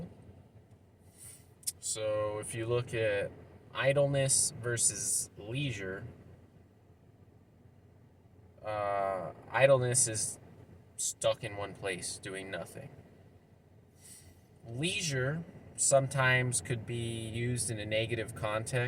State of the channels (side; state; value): both; identical; correlation 1.00